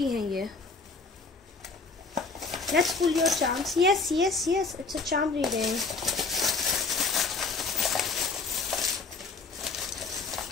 है ये। Let's pull your charms. Yes. It's a charm reading.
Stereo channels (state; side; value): quieter; right; 4.2 dB